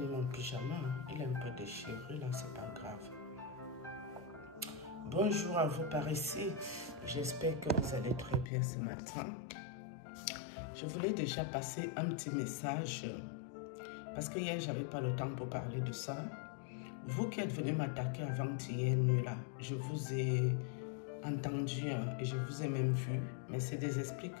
mon pyjama. Il est un peu déchiré là, c'est pas grave. Bonjour à vous par ici. J'espère que vous allez très bien ce matin. Je voulais déjà passer un petit message parce que hier, j'avais pas le temps pour parler de ça. Vous qui êtes venus m'attaquer avant-hier nuit là, je vous ai entendu et je vous ai même vu, mais c'est des esprits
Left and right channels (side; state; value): right; drops out; at 8.5 s